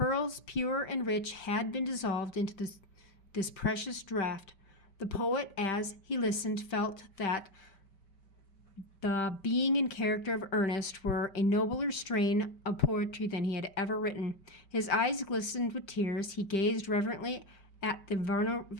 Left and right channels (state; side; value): late; right; 5.2 ms